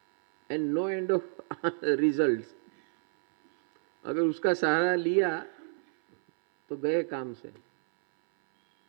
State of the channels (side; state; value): left; silent; 58 dB below the other